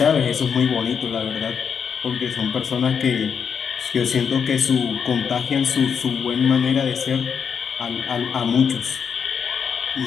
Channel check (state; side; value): quieter; right; 6.9 dB